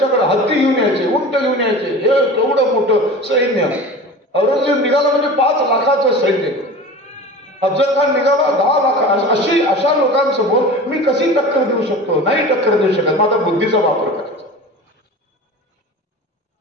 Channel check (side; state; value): both; normal; correlation 0.35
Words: हत्ती घेऊन यायचे, उंट घेऊन यायचे, हे केवढं मोठं सैन्य. औरंगजेब निघाला म्हणजे 5 लाखाचं सैन्य. अफजल खान निघाला 10 लाख. अशा लोकांसमोर मी कशी टक्कर देऊ शकतो? नाही टक्कर देऊ शकत. मग आता बुद्धीचा वापर करायचा.